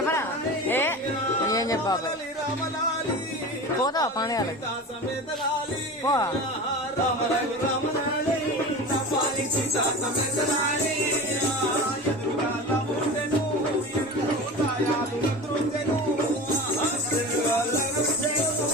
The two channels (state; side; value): normal; both; correlation 0.31